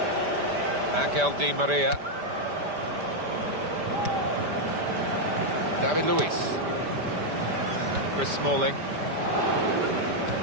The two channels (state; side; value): late; left; 5.1 ms